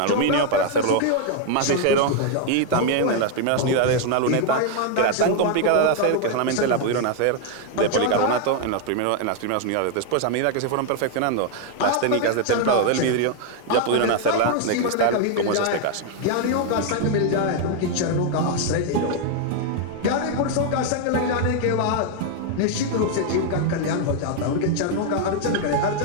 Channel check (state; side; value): different; both; correlation 0.00